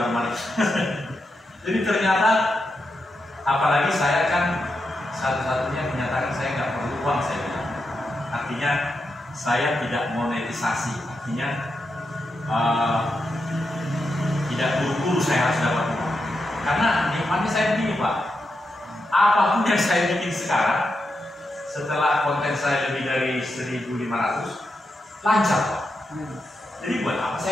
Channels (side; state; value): both; normal; correlation 0.86